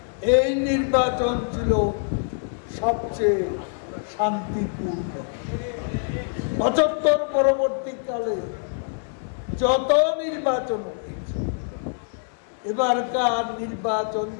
এই নির্বাচন ছিল সবচেয়ে শান্তিপূর্ণ। ৭৫ পরবর্তীকালে যত নির্বাচন হয়েছে, এবারকার নির্বাচন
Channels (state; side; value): silent; right; digital silence